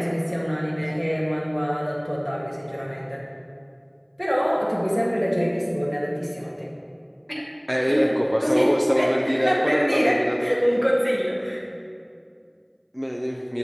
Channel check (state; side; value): identical; both; correlation 1.00